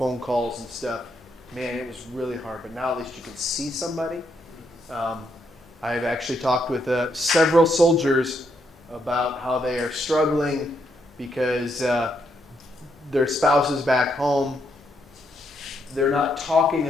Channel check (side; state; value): both; normal; correlation 0.77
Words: calls and stuff, man, it was really hard. But now at least you can see somebody. I've actually talked with several soldiers about how they are struggling because their spouses back home, they're not talking